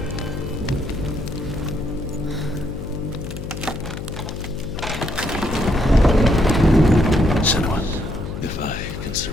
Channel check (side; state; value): left; noise; hum, 8 dB below the sound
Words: Senua, If I can